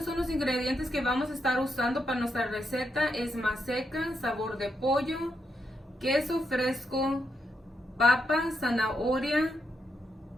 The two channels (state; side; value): normal; both; correlation 0.81